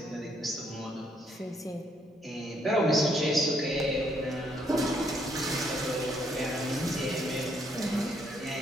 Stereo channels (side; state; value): both; normal; correlation 0.71